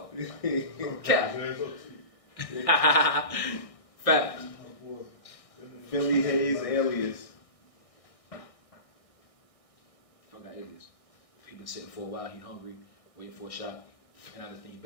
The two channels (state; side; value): late; right; 1.6 ms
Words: Cat. Fact. Philly Hayes alias. Fuck got alias. He been sitting for a while. He hungry, waiting for a shot. And I just think he